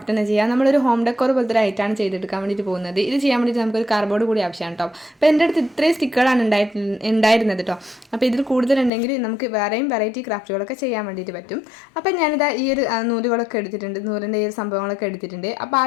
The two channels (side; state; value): right; drops out; at 8.9 s